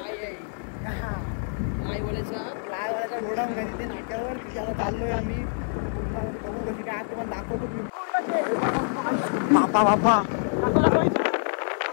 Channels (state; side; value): silent; right; 61 dB below the other